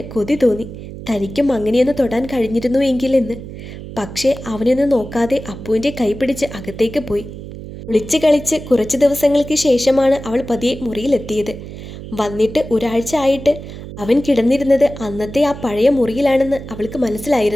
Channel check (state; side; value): noise; right; hum, 12 dB below the sound